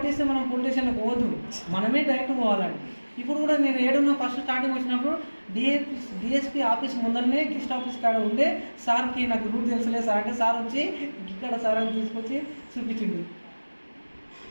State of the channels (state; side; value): inverted; both; correlation -1.00